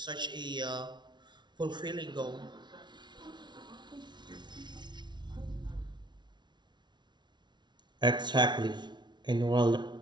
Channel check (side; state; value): left; late; 0.21 ms